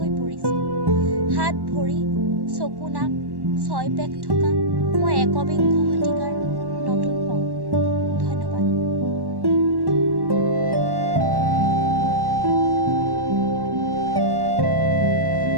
পৰিছোঁ, হাত ভৰি চকু নাক ছয় পেক থকা মই একবিংশ শতিকাৰ নতুন পংগু। ধন্যবাদ।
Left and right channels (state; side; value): late; left; 1.1 ms